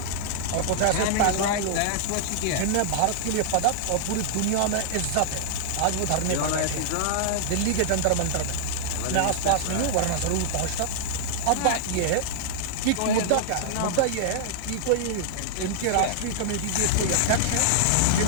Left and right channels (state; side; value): different; both; correlation -0.01